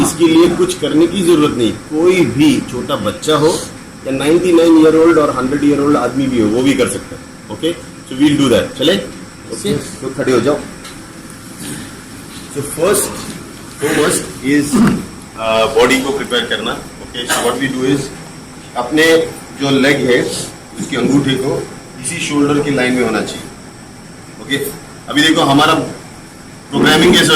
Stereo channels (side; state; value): both; identical; correlation 1.00